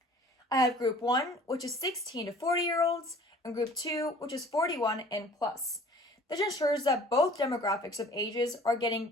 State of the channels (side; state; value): both; normal; correlation 0.49